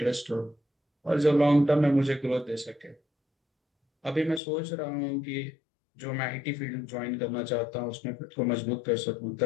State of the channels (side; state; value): right; drops out; at 4.4 s